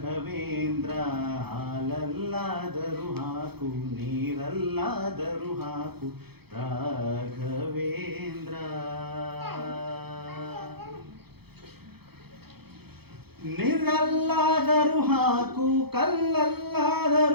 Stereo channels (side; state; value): left; late; 0.97 ms